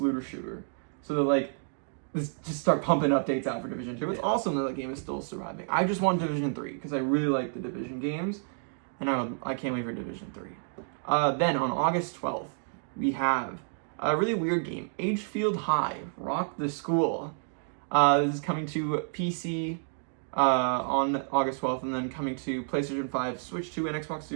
shooter. So they're just start pumping updates out for Division 2. It's awesome that the game is still surviving. I just want Division 3 because I really like the Division games, and I can't wait for Division 3. Then on August 12th, we have a really weird game, Agefield High, Rock the School. This is coming to PC on August 12th, and then coming to PlayStation 5, Switch 2, and Xbox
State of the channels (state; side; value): silent; left; digital silence